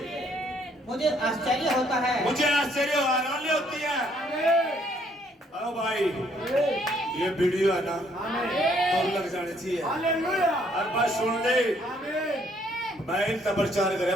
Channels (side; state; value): both; normal; correlation 0.67